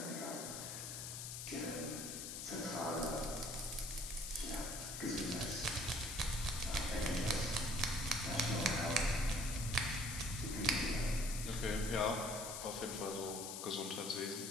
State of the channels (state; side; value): noise; left; hiss, 6 dB below the sound